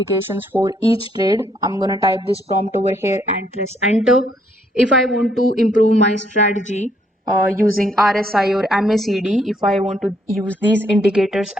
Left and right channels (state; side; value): normal; both; correlation 0.70